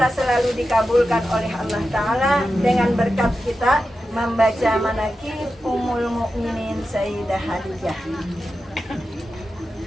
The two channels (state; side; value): normal; both; correlation 0.91